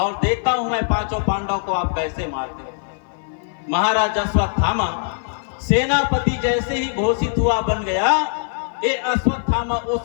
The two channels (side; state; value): right; silent; 56 dB below the other